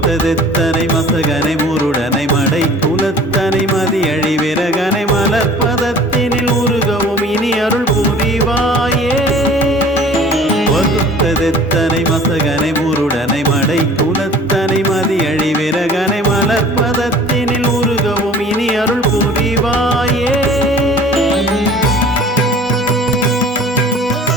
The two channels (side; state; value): both; normal; correlation 0.47